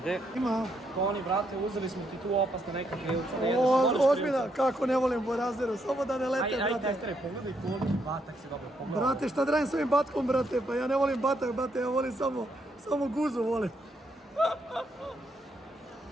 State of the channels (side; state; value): both; normal; correlation 0.76